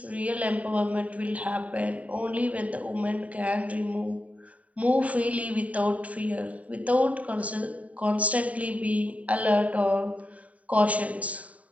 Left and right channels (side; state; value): left; late; 0.069 ms